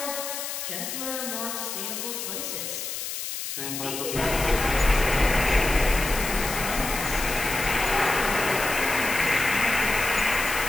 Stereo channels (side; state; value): left; noise; hiss, 5 dB below the sound